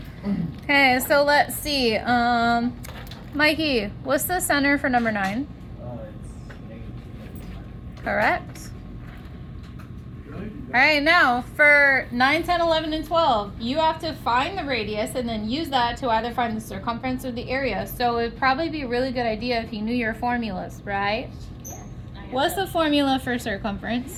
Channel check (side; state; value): both; identical; correlation 1.00